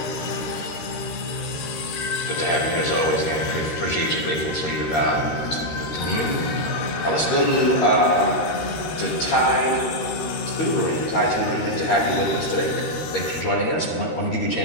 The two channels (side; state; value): right; late; 13 ms